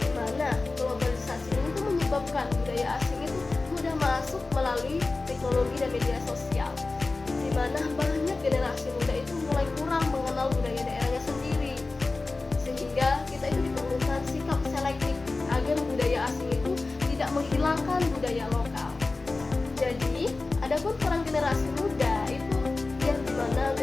mana globalisasi ini tuh menyebabkan budaya asing itu mudah masuk melalui teknologi dan media sosial, di mana banyak generasi muda itu mulai kurang mengenal budaya daerahnya sendiri, sehingga kita itu diperlukan sikap selektif agar budaya asing itu tidak menghilangkan budaya lokal. Jadi, adapun peran generasi muda itu yang dimana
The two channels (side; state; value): right; quieter; 3.5 dB